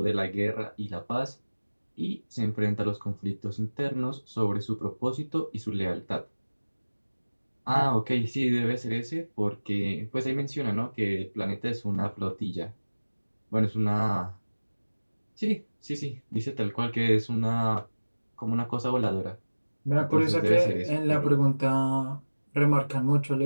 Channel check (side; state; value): both; inverted; correlation -1.00